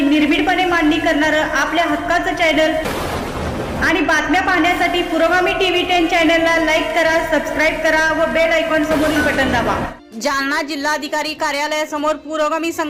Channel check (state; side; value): identical; both; correlation 1.00